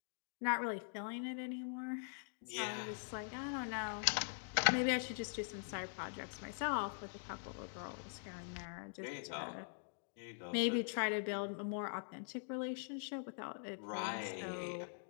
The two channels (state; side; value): silent; right; digital silence